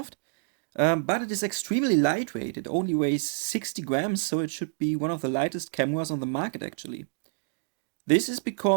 but it is extremely lightweight. It only weighs 60 grams, so it should be one of the lightest cameras on the market actually. This is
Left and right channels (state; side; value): silent; left; digital silence